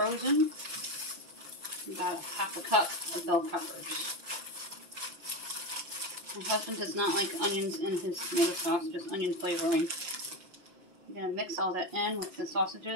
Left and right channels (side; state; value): left; late; 5.8 ms